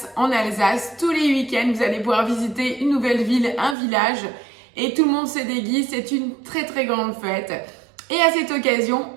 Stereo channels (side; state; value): left; drops out; at 3.8 s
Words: en Alsace. Tous les week-ends, vous allez pouvoir visiter une nouvelle ville, un village, et tout le monde se déguise, c'est une très très grande fête. Et à cette occasion,